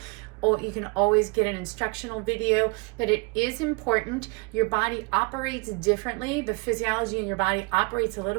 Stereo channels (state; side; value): quieter; left; 30.6 dB